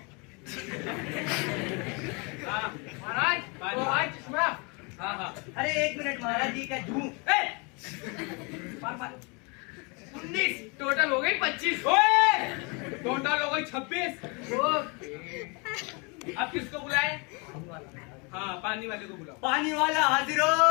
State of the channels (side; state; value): right; quieter; 31.2 dB